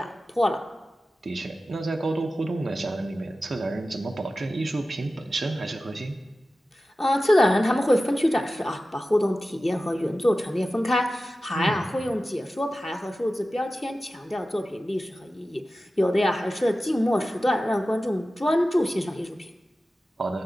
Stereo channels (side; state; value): both; normal; correlation 0.95